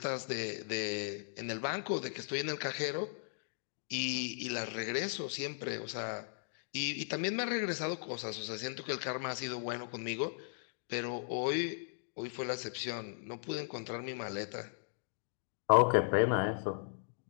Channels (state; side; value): silent; right; digital silence